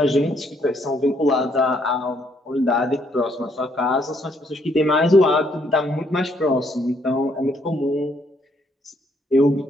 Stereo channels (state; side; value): normal; both; correlation 0.70